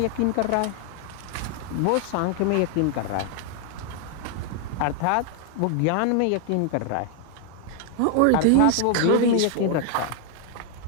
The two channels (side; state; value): both; different; correlation 0.00